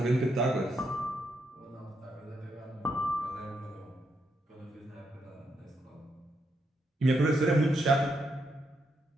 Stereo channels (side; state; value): both; normal; correlation 0.80